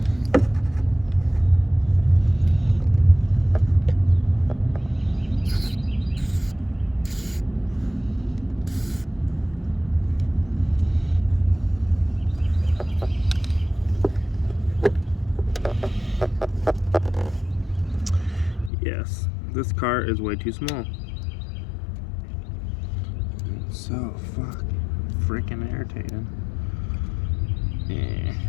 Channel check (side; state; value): right; drops out; at 18.7 s